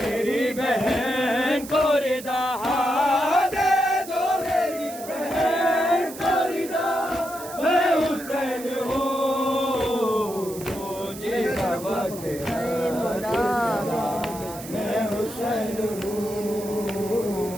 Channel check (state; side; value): noise; right; hiss, 14 dB below the sound